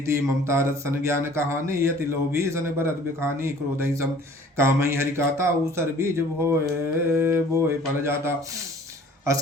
ममता रथ सन ज्ञान कहानी यति लोभी सन भरत बिखानी क्रोधई सम कामई हरिकाता ऊसर बीज भोए बोए फल जाता अस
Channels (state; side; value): normal; both; correlation 0.51